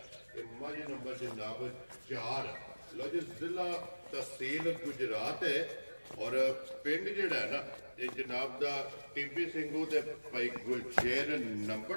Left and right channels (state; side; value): inverted; both; correlation -1.00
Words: ਇਹ ਮੱਝ ਨੰਬਰ ਜਨਾਬ 4 ਲੋ ਜੀ ਜ਼ਿਲ੍ਹਾ ਤਹਿਸੀਲ ਗੁਜਰਾਤ ਹੈ ਔਰ ਪਿੰਡ ਜਿਹੜਾ ਹੈ ਨਾ ਇਹ ਜਨਾਬ ਦਾ ਟੀਬੀ ਸਿੰਘੂ ਤੇ ਭਾਈ ਗੁਲਸ਼ੇਰ